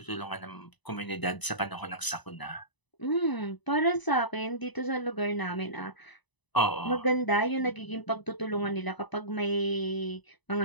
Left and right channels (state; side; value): late; right; 1.0 ms